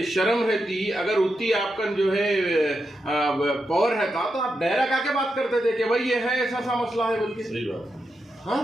शर्म रहती, अगर उतनी आपका जो है पावर रहता तो आप डायरेक्ट आके बात करते थे कि भाई ये है ऐसा मसला है, बल्कि सही बात। हाँ,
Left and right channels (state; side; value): normal; both; correlation 0.86